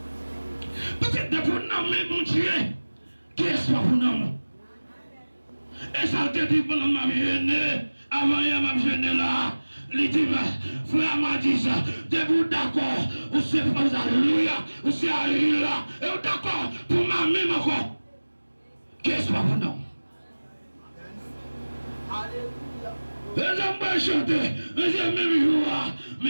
Peut-être de pour nous, mais mon Dieu, qui espoir pour nous? Et ça te dit pour ma vie, avant hier ma vie là, il dit, frère Amadis, vous d'accord, vous êtes pas alléluia, vous êtes alléluia, et vous d'accord pour ma même encore. Qu'est-ce que vous non? Les hommes vont chanter, même jour,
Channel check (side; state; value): both; inverted; correlation -1.00